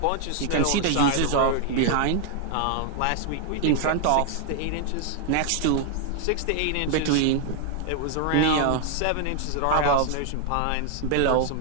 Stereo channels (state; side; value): different; both; correlation 0.00